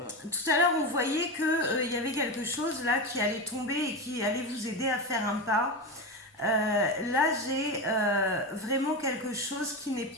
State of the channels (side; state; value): both; normal; correlation 0.18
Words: à l'heure, on voyait qu'il y avait quelque chose là qui allait tomber et qui allait vous aider à faire un pas. Là, j'ai vraiment quelque chose qui n'est